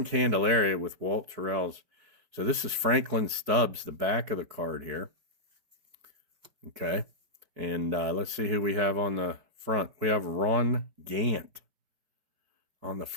Candelaria with Walt Terrell's. So this is Franklin Stubbs, the back of the card here. Okay. And let's see who we have on the front. We have Ron Gant on the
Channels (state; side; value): late; left; 5.1 ms